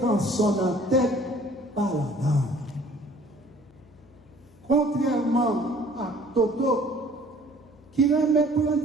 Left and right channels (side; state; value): left; noise; hum, 28 dB below the sound